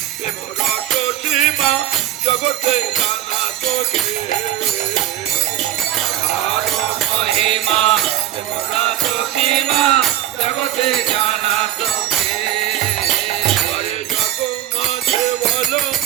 প্রেম রস সীমা জগতে জানা তোকে রাধার মহিমা প্রেম রস সীমা জগতে জানা তোকে আরে জগ মাঝে বলো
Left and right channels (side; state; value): left; quieter; 13.0 dB